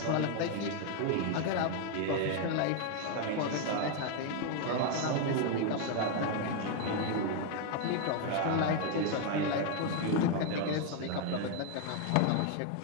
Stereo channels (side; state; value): both; different; correlation 0.00